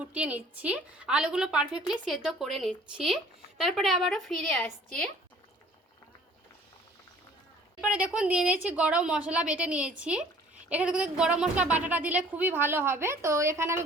নিচ্ছি, আলুগুলো পারফেক্টলি সেদ্ধ করে নিচ্ছি। তারপরে আবারও ফিরে আসছি। এরপরে দেখুন দিয়ে নিয়েছি গরম মশলা, বেটে নিয়েছি। এখানে কিন্তু গরম মশলা বাটাটা দিলে খুবই ভালো হবে। তো এখানে আমি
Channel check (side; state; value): both; normal; correlation 0.53